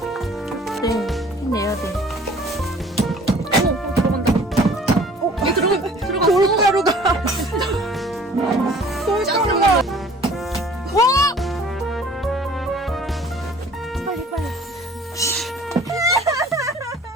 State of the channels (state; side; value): normal; both; correlation 0.51